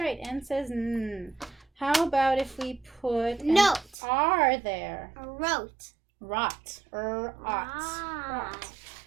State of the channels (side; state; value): left; drops out; at 4.0 s